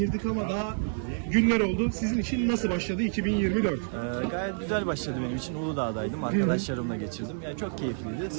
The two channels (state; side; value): silent; left; digital silence